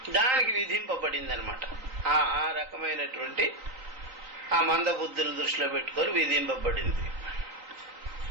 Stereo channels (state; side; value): late; left; 3.9 ms